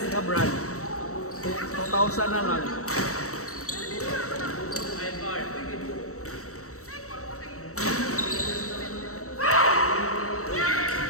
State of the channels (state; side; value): late; right; 0.65 ms